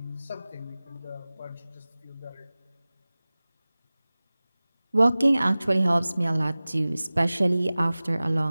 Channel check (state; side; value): inverted; both; correlation -0.98